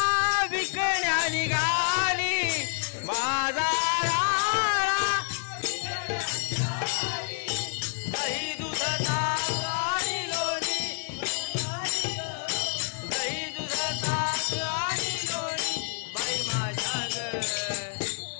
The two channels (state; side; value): silent; right; 59 dB below the other